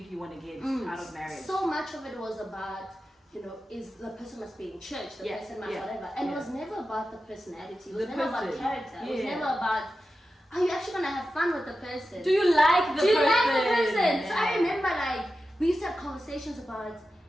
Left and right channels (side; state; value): both; normal; correlation 0.92